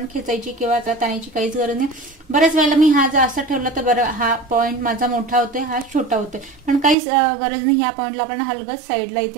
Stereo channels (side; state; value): left; drops out; at 7.0 s